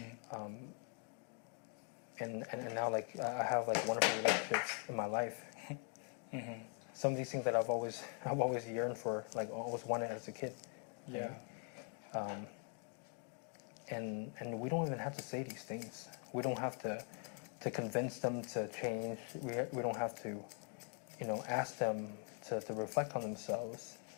now like I have like wonderful relationships in my life. Some of these things that I've always yearned for, like always wanted as a kid. Yeah. Right? And we don't even have to say these things. We don't have to convince them to change. We don't have to, ask them to reflect on themselves.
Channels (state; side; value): quieter; right; 39.2 dB